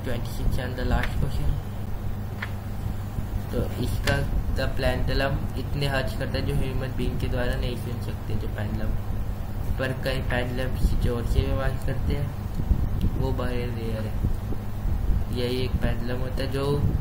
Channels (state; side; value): identical; both; correlation 1.00